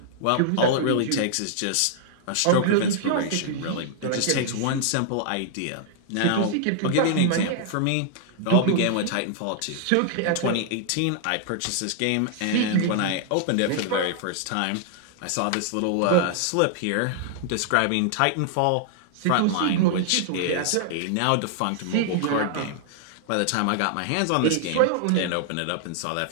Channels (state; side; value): different; both; correlation 0.00